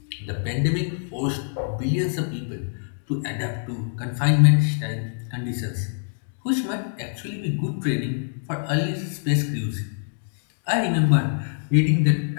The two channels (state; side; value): silent; right; digital silence